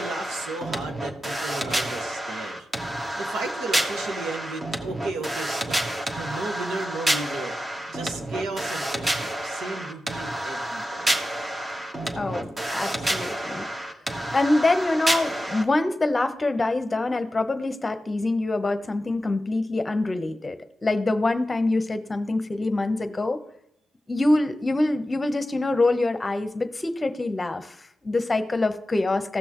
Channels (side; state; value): both; normal; correlation 0.93